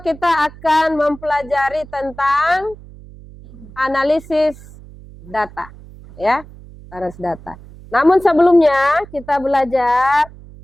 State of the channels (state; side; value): noise; right; hum, 19 dB below the sound